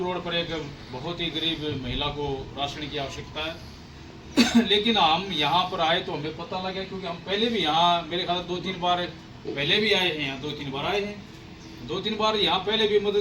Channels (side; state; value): both; identical; correlation 1.00